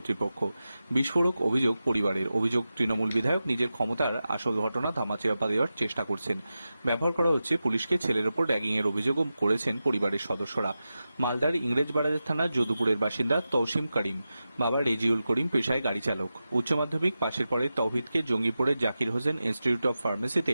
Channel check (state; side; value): inverted; both; correlation -0.92